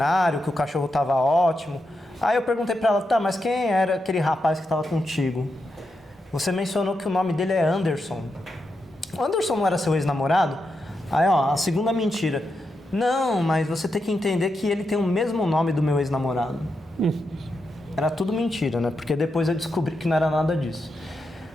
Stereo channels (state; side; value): normal; both; correlation 0.86